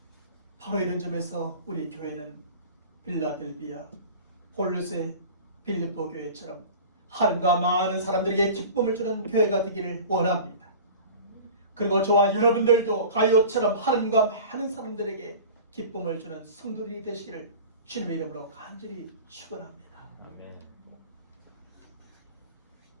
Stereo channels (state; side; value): inverted; both; correlation -0.38